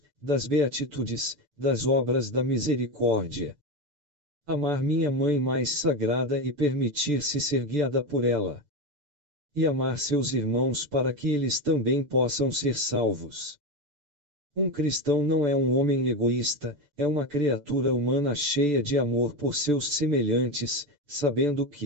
das beatitudes, das obras da misericórdia. Amar minha mãe mais sagrada e permitir-se ser guiada por ela. E amar seus irmãos para que eles também possam ser salvos. Um cristão não é um homem egoísta, é uma criatura humana cheia de amor por seus semelhantes, sabendo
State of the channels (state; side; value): late; left; 6.8 ms